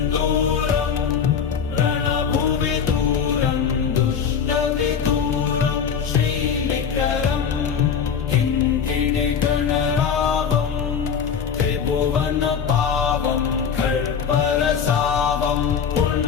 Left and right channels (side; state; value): right; quieter; 7.1 dB